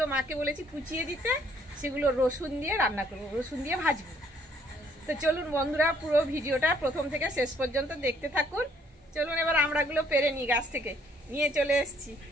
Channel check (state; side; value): normal; both; correlation 0.64